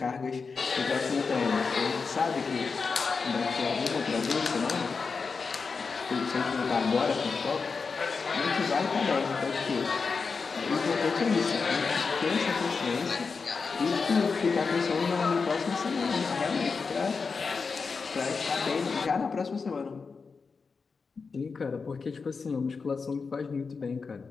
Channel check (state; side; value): quieter; right; 4.9 dB